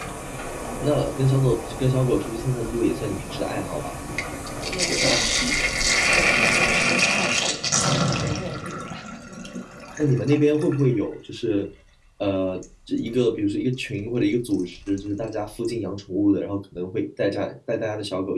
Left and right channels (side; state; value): both; identical; correlation 1.00